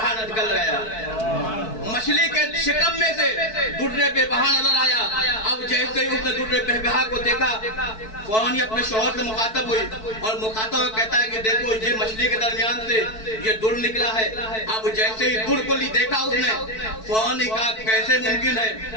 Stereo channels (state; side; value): late; right; 4.6 ms